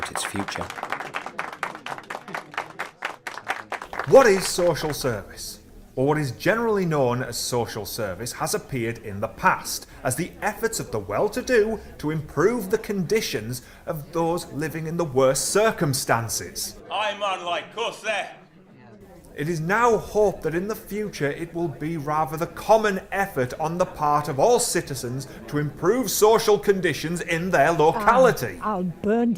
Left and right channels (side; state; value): both; identical; correlation 1.00